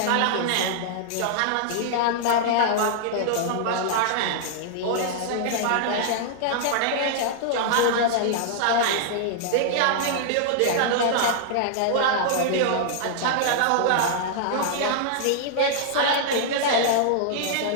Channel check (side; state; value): both; different; correlation -0.01